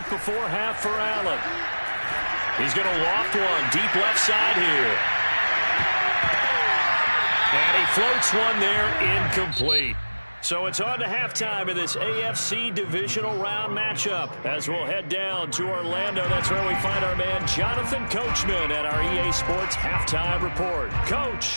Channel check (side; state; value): both; inverted; correlation -1.00